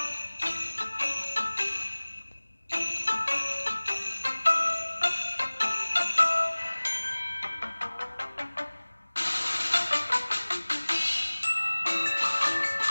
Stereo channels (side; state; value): both; inverted; correlation -1.00